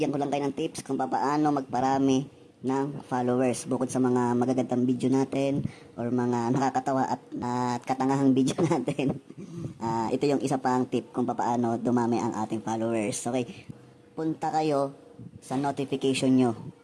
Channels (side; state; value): both; identical; correlation 1.00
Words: ko lang kayo ng tips kung paano magparami ng followers bukod sa mga magagandang video natin or mga nakakatawa at katangahang video natin. Ito yung isa pang tip kung paano dumami ang ating followers. Okay, punta kayo sa notification nyo.